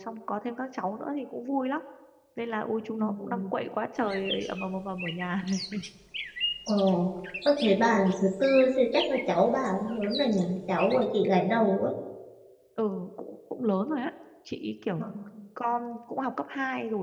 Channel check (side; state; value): both; identical; correlation 1.00